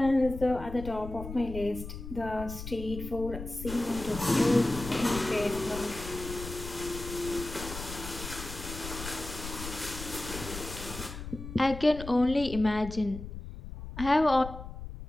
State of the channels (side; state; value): left; noise; rumble, 10 dB below the sound